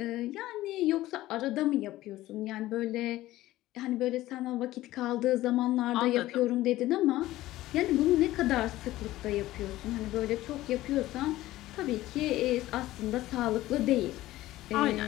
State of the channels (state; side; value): quieter; right; 16.1 dB